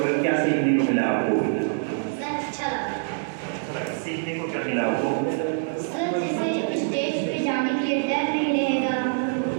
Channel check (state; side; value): silent; left; digital silence